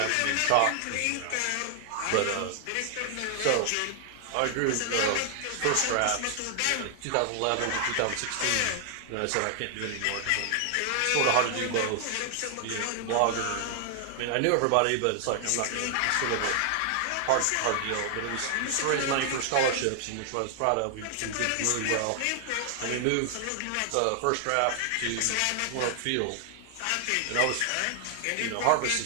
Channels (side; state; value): both; different; correlation 0.00